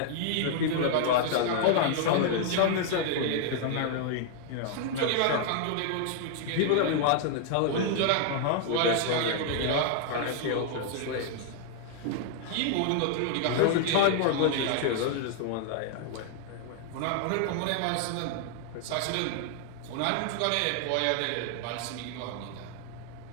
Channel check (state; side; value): different; both; correlation 0.00